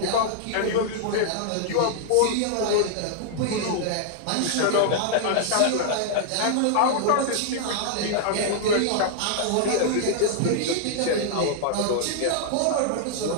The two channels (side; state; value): both; different; correlation -0.01